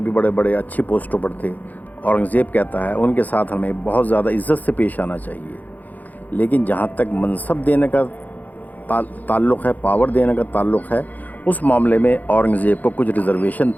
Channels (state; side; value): late; right; 0.081 ms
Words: بڑے بڑے اچھی پوسٹوں پر تھے، اورنگزیب کہتا ہے ان کے ساتھ ہمیں بہت زیادہ عزت سے پیش آنا چاہیے۔ لیکن جہاں تک منصب دینے کا تعلق ہے، پاور دینے کا تعلق ہے، اس معاملے میں اورنگزیب کو کچھ ریزرویشن